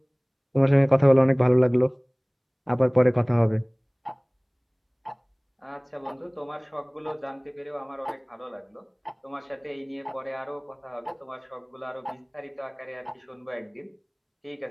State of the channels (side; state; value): both; identical; correlation 1.00